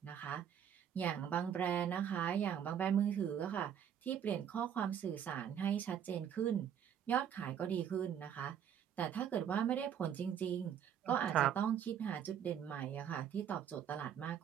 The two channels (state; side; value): quieter; left; 8.9 dB